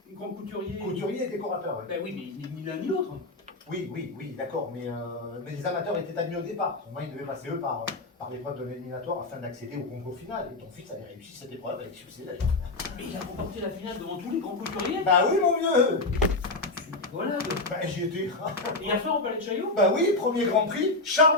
grands couturiers? Couturiers et décorateurs, oui. Ben oui, mais ni l'un ni l'autre. Oui, d'accord, mais les amateurs étaient admis au départ. Au moins, ils devaient passer eux par l'épreuve de l'éliminatoire afin d'accéder au concours final. Et ton fils avait réussi cette épreuve avec succès d'ailleurs. Mais il a remporté la finale devant tous les grands couturiers? Bah oui, mon vieux. Voilà. Bah j'y étais. Et hier soir au Palais de Chaillot? Bah oui, premier Grand Prix,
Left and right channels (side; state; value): right; quieter; 3.1 dB